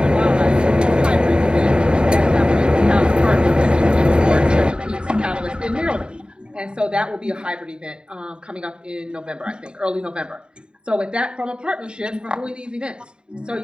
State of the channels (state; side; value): late; left; 0.050 ms